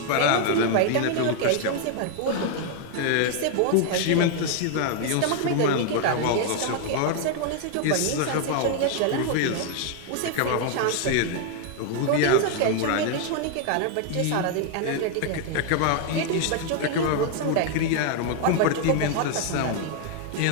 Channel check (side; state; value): both; different; correlation 0.00